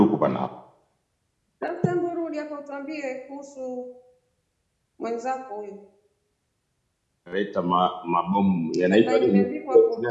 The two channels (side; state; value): both; identical; correlation 1.00